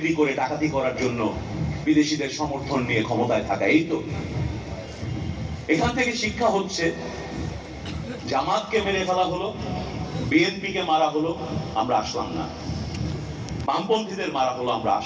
করে ডাকাতি করার জন্য বিদেশিদের সমর্থন নিয়ে ক্ষমতায় থাকা। এই তো এখান থেকে শিক্ষা হচ্ছে, জামাতকে মেরে ফেলা হলো, বিএনপিকে মারা হলো, আমরা আসলাম না। বামপন্থীদের মারা হলো, আমরা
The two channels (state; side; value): identical; both; correlation 1.00